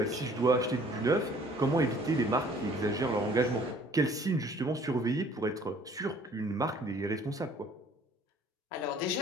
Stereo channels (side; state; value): both; normal; correlation 0.55